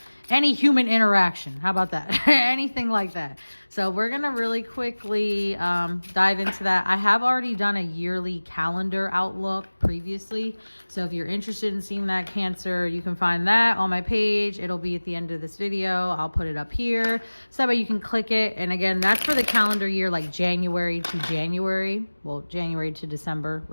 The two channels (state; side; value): inverted; both; correlation -1.00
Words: Any human interaction. How about that? Anything like that. So we're going to really quickly dive into that. I have already done a yearly calendar outlook previously. So if you're interested in seeing that, Cancer, you can find that on my page. It'll be at the end of this video. I'll put it up here so that way you can click it. And again, that's for the calendar year, like January to January. Well, January to December,